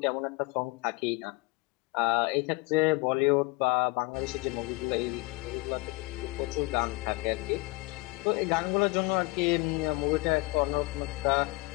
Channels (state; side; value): quieter; right; 23.9 dB